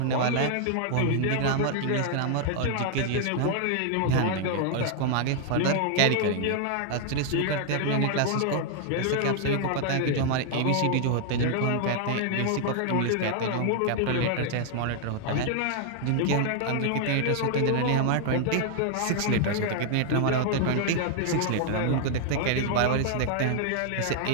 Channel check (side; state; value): both; different; correlation 0.00